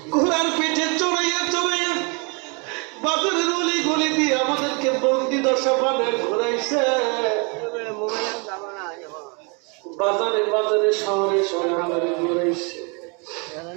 ঘোড়ার পিঠে চড়াইয়া চড়াইয়া বাজারের অলি গলি দিয়ে আমাদেরকে বন্দি দশা বানায় ঘুরাইছে, বাজারে বাজারে শহরে শহরে ঘুরাইছে।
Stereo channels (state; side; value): quieter; left; 33.1 dB